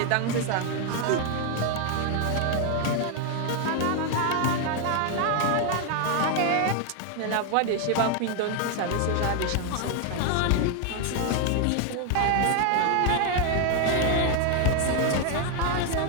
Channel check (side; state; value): both; different; correlation 0.01